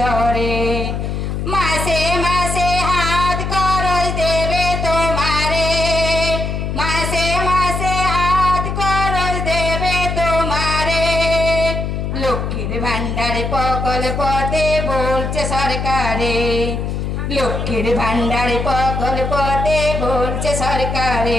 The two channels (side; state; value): left; noise; hum, 3 dB below the sound